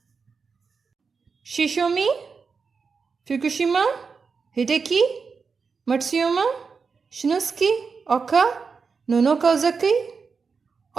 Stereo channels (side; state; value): left; quieter; 5.2 dB